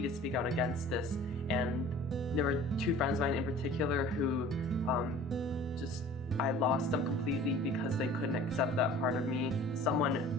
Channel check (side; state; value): both; normal; correlation 0.46